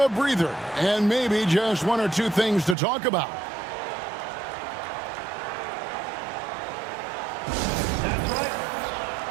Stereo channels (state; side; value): drops out; left; at 2.8 s